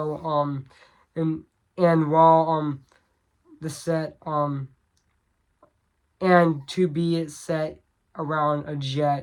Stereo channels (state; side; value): identical; both; correlation 1.00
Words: and while the set and to be set around a